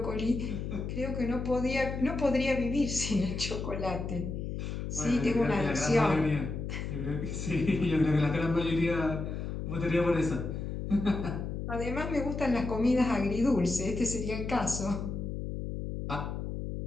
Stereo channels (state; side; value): noise; left; hum, 4 dB below the sound